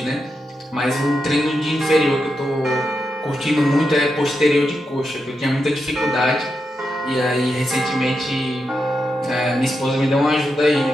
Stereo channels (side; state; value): both; normal; correlation 0.86